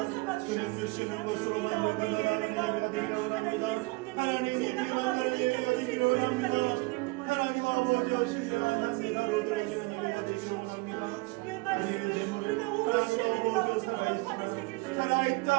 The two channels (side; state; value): left; quieter; 25.1 dB